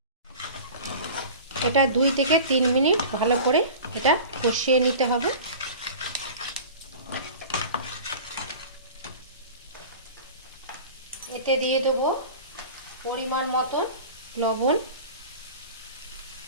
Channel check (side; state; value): both; inverted; correlation -0.38